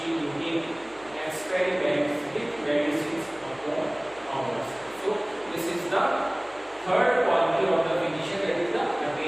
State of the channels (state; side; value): noise; right; hum, 27 dB below the sound